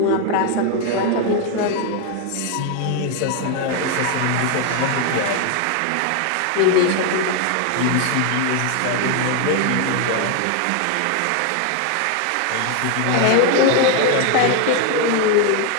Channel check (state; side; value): different; both; correlation 0.01